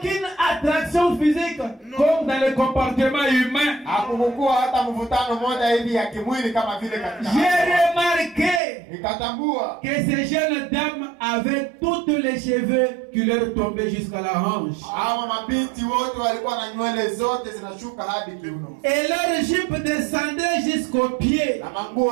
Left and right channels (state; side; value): drops out; left; at 8.6 s